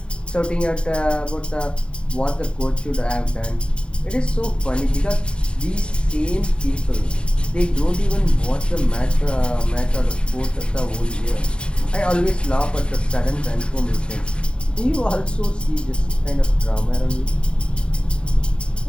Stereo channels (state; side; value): late; right; 0.052 ms